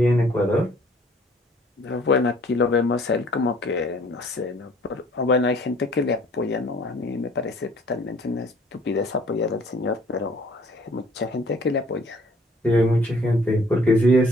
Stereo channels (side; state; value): both; normal; correlation 0.56